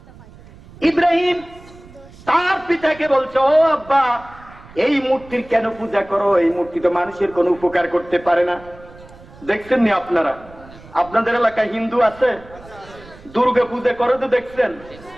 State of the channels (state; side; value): noise; right; rumble, 21 dB below the sound